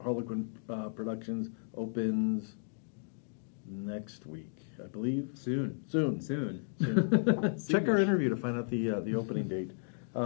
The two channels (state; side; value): silent; right; digital silence